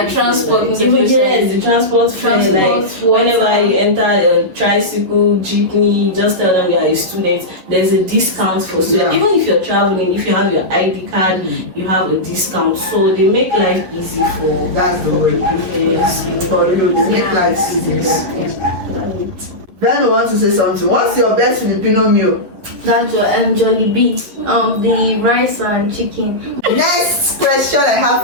transport, Like, most even especially. yes, the transport fare, like water. whenever you enter a tricycle, jeepney, just tell them you are a student. There's a discount for students. Yeah. Even if you're traveling, if you have your ID card, you have a discount. So they make life easy for. That's the word. Yes. For you, they make life easy. Veno wants to say something. What's your best Filipino meal? That's Jollibee. The rice and chicken. Next question I have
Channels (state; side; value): late; left; 11 ms